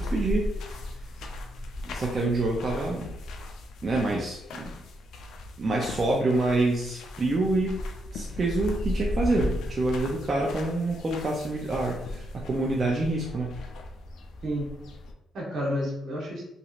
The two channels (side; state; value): both; normal; correlation 0.80